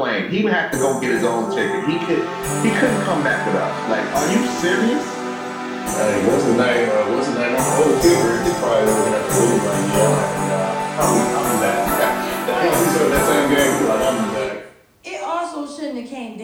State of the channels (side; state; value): both; identical; correlation 1.00